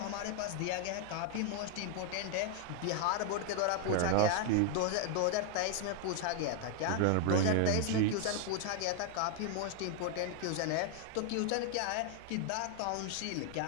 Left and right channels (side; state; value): both; different; correlation 0.00